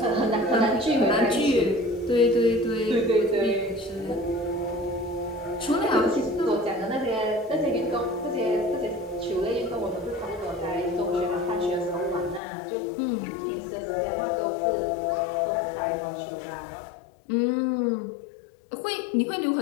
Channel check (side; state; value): right; drops out; at 12.4 s